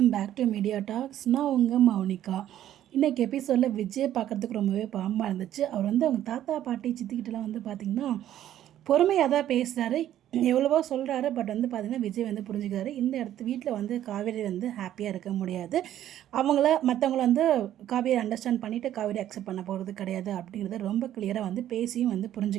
back to media talks. நான் உங்கள் மௌனிகா. இன்றைக்கி எபிசோடில் விஜய் பார்க்குறதுக்கு ரொம்பவே பாவமாக இருந்துச்சு. அவர் அவங்க தாத்தா பாட்டி சித்திக்கிட்டலாம் பார்த்திங்கன்னா பொறுமையாக தான் பேசுகிறாரு, எவ்வளவோ சொல்கிறாரு. பட் பார்த்திங்கன்னா விஜய் புரிஞ்சுக்கிறாரு. இந்த வீட்டில் காவேரி ஹாப்பியாக இருக்க முடியாது. மற்றவங்கள காவேரி அண்டர்ஸ்டாண்ட் பண்ணிவிட்டு காவேரி அக்செப்ட் பண்ண போகிறது கிடையாது அப்படிங்கிறத ரொம்ப கிளியராக பேசியும்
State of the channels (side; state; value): left; quieter; 11.9 dB